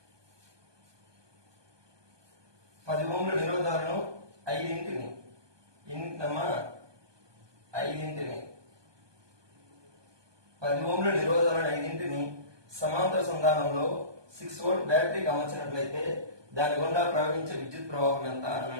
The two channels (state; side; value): late; left; 1.2 ms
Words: 10 ఓంల నిరోధాలను 5 ఓంల నిరోధాలను 5 సమాంతర సంధానంలో 6 వోల్ట్ బ్యాటరీకి అమర్చినట్లయితే దాని గుండా ప్రవహించే విద్యుత్ ప్రవాహం ఎంత